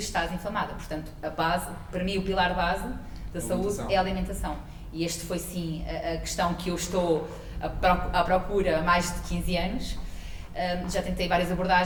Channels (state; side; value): identical; both; correlation 1.00